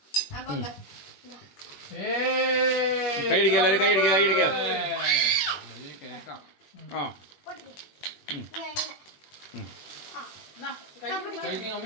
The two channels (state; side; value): late; right; 21 ms